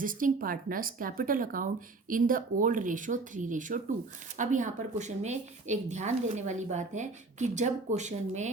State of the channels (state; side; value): quieter; left; 3.6 dB